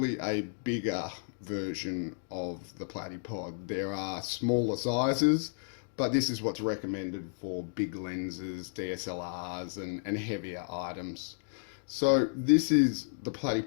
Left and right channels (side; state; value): right; silent; digital silence